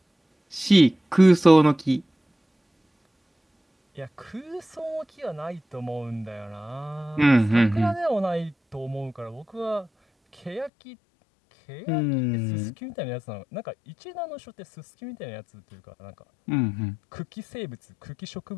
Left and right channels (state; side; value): drops out; right; at 10.7 s